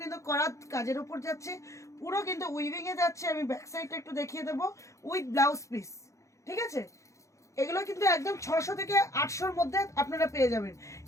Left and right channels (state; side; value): late; right; 0.15 ms